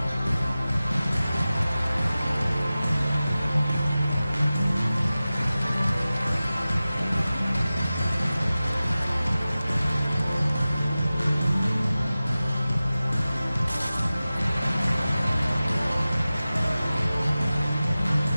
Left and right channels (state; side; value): inverted; both; correlation -0.96